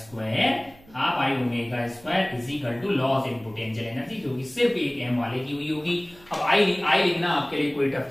square is equal to loss in potential energy, जो कि सिर्फ एक m वाले की हुई होगी। अब आई लिखना आपके लिए कोई टफ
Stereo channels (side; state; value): right; noise; hum, 26 dB below the sound